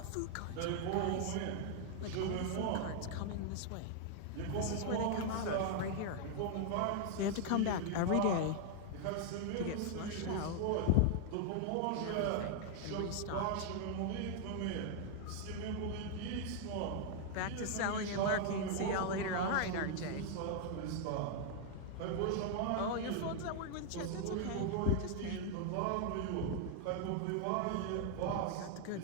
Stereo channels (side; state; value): both; different; correlation 0.00